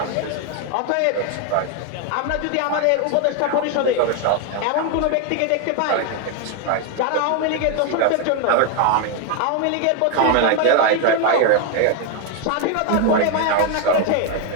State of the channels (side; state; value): both; different; correlation 0.01